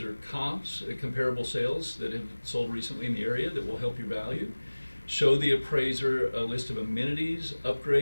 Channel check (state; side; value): inverted; both; correlation -1.00